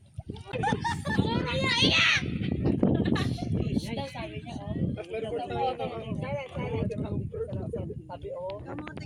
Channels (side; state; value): both; identical; correlation 1.00